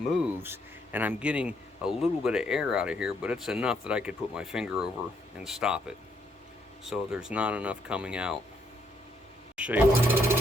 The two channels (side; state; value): both; normal; correlation 0.72